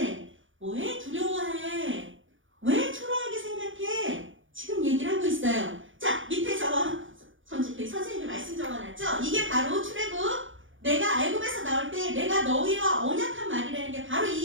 왜 두려워해? 왜 초라하게 생각해? 지금 얘기를 하고 있어요. 자, 밑에 선생님이 말씀 적어놨죠? 이게 바로 출애굽. 내가 애굽에서 나올 때 내가 너희와 언약한 말이라는 게 바로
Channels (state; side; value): late; left; 0.57 ms